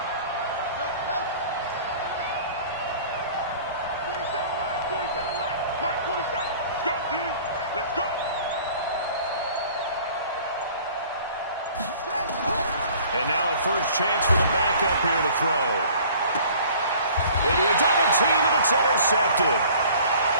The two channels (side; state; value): both; inverted; correlation -0.50